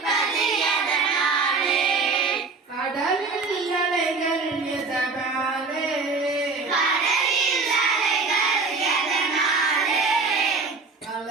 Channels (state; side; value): quieter; left; 4.2 dB